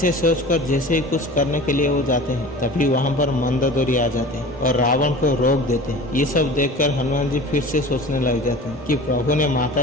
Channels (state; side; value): normal; both; correlation 0.39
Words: सोचकर जैसे ही कुछ करने के लिए वो जाते हैं, तभी वहाँ पर मंदोदरी आ जाते हैं और रावण को रोक देते हैं। ये सब देखकर हनुमान जी फिर से सोचने लग जाते हैं कि प्रभु ने